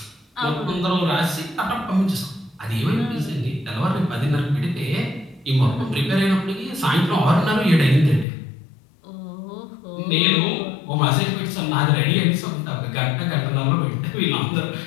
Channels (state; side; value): drops out; right; at 8.2 s